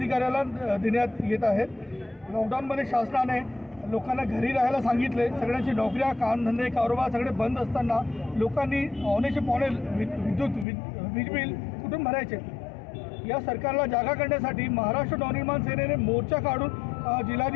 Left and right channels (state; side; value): drops out; right; at 10.7 s